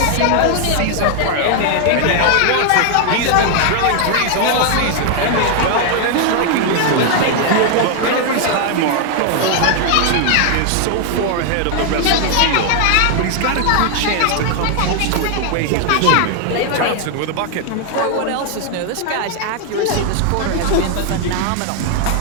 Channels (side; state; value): both; different; correlation 0.00